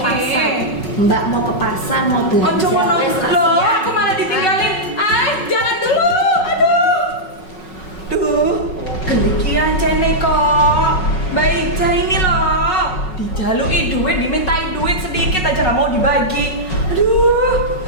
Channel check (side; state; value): right; late; 5.4 ms